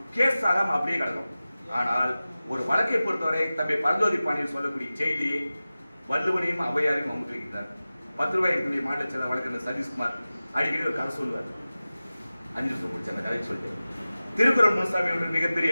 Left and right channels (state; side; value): inverted; both; correlation -0.96